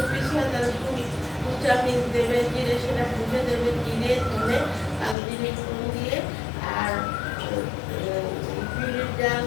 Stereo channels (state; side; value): drops out; right; at 5.2 s